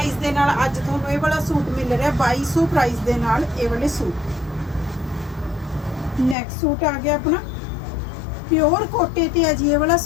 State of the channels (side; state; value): right; drops out; at 6.4 s